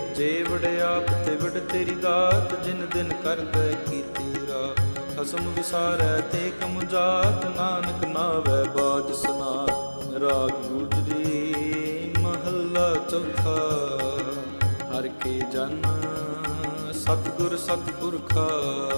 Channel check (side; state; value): both; inverted; correlation -1.00